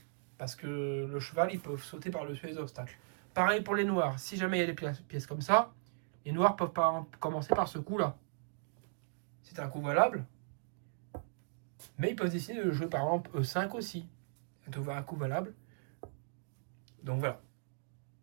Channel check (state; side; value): silent; left; digital silence